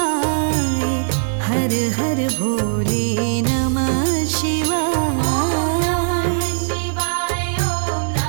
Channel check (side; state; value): left; silent; digital silence